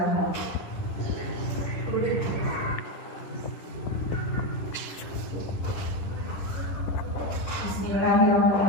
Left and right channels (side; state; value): right; late; 10 ms